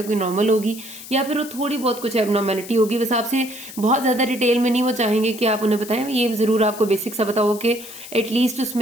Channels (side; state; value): left; noise; hiss, 14 dB below the sound